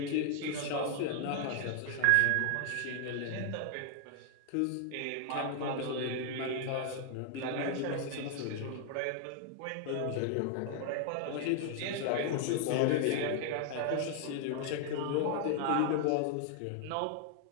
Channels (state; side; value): different; both; correlation 0.00